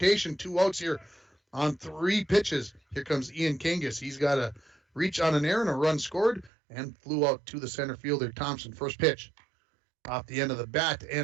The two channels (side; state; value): left; drops out; at 6.5 s